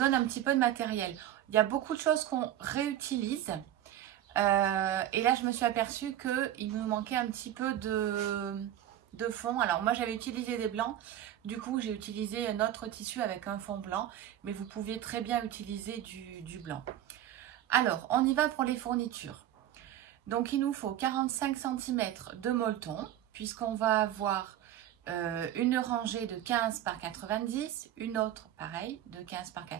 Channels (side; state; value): left; quieter; 12.0 dB